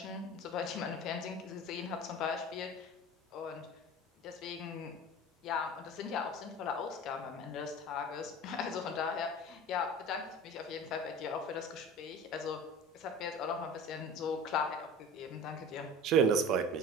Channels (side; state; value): both; normal; correlation 0.37